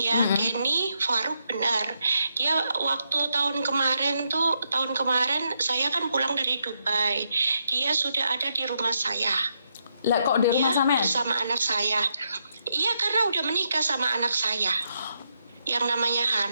Kenny Faruk, benar. Dia waktu tahun kemarin saya kan pulang dari Dubai. Dia sudah ada di rumah saya. Lah kok di rumah sampean? Bersama anak saya. Iya, karena udah menikah sama anak saya yang namanya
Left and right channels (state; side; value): inverted; both; correlation -0.80